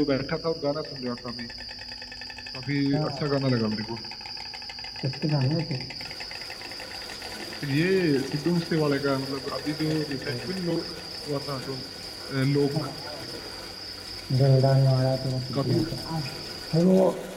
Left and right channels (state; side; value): identical; both; correlation 1.00